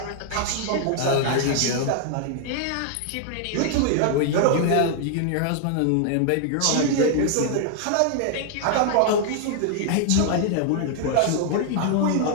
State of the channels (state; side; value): different; both; correlation 0.00